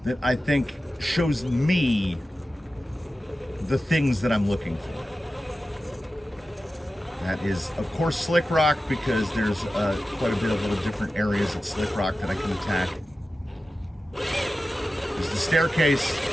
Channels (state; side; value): normal; both; correlation 0.94